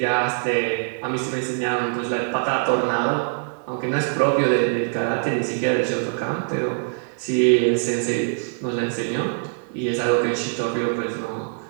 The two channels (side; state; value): left; silent; 56 dB below the other